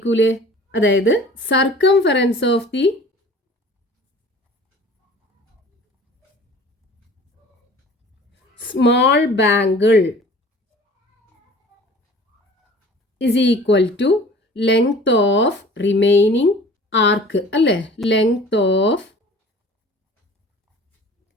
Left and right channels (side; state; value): both; normal; correlation 0.46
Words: അതായത് circumference of the small bangle is equal to length of remaining arc അല്ലേ. length of